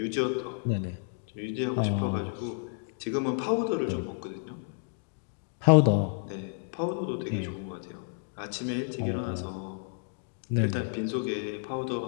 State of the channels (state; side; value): silent; right; digital silence